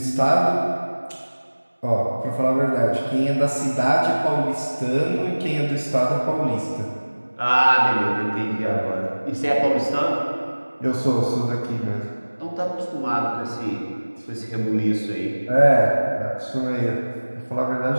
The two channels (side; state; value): both; inverted; correlation -1.00